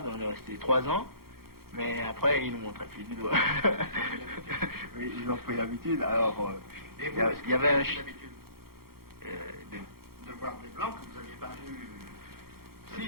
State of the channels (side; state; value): left; late; 0.94 ms